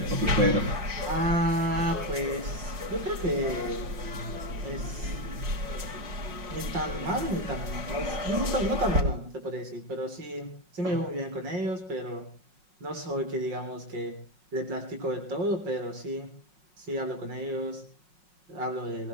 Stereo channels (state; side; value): late; left; 5.5 ms